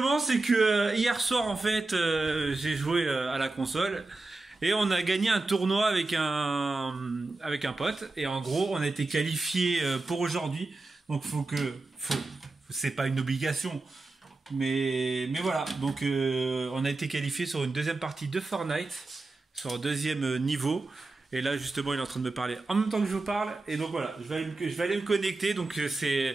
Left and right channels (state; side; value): quieter; left; 3.3 dB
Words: c'est que hier soir, en fait, j'ai joué à la console et on a gagné un tournoi avec un pote. Et en gros, on a été qualifié pour aujourd'hui. Donc, c'est pas une obligation, mais voilà. Donc, on a été qualifié sur une deuxième partie de Fortnite, sur un deuxième niveau. Et là, justement, il est en train de me parler en même temps que je vous parle. Et donc voilà, je vais aller me connecter. Donc, c'est